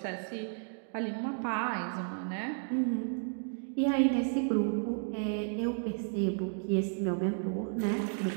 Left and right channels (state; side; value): silent; left; 56 dB below the other